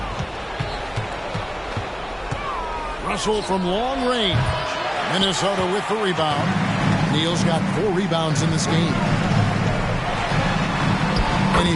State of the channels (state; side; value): identical; both; correlation 1.00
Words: Russell from long range. Minnesota with the rebound. Neal's got 4 rebounds in this game. And